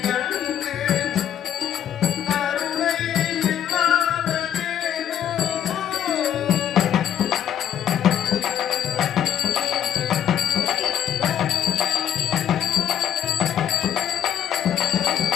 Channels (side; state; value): right; quieter; 9.9 dB